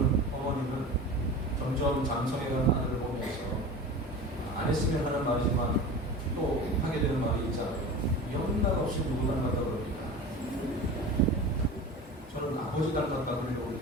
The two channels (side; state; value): both; normal; correlation 0.34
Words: 어머니는 점점 장성해가는 아들을 보면서 안 했으면 하는 말이지만 또 하게 되는 말이 있잖아요. 연락 없이 누구 닮았다 그럽니다. 저는 아버지 닮았다 그러려고